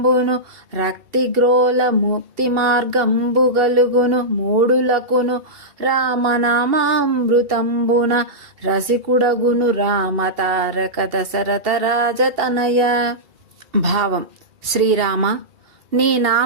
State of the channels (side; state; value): left; late; 2.8 ms